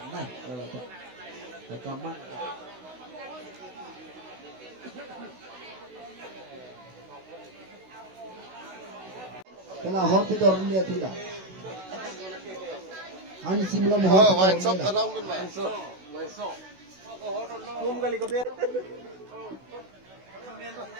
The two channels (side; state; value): left; late; 16 ms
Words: kalau tak rekaman. Kena hot itu orang dia tidak. Hanya simla mohon. Oh, wine shop ta long tu nama. Besok. Belum kali kau